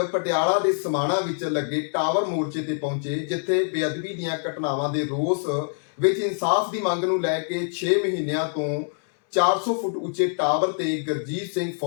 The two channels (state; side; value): silent; right; 62 dB below the other